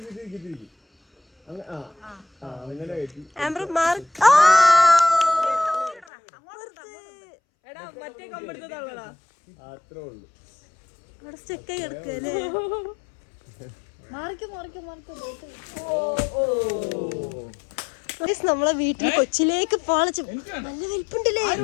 സ്റ്റെക്കായി കിടക്കല്ലേ. നമ്മളെ വീട്ടിൽ കൊച്ചിലേക്ക് പാളച്ച് നല്ല വലിപ്പുണ്ടല്ലേ.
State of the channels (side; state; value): right; drops out; at 6.1 s